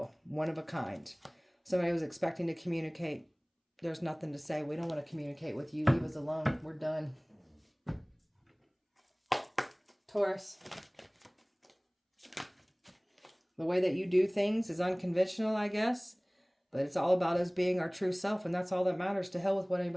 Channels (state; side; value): identical; both; correlation 1.00